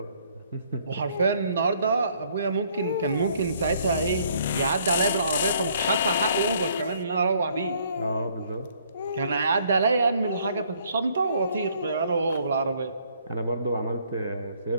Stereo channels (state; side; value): inverted; both; correlation -0.64